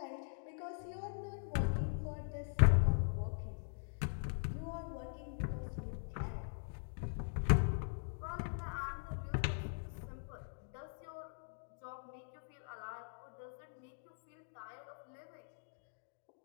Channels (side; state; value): right; silent; digital silence